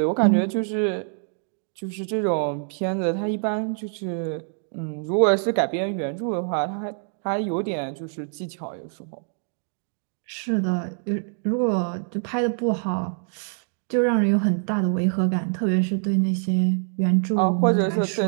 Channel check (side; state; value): left; silent; 62 dB below the other